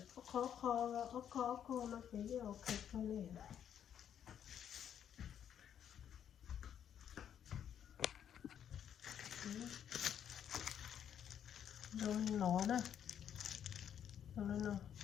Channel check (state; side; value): quieter; right; 9.2 dB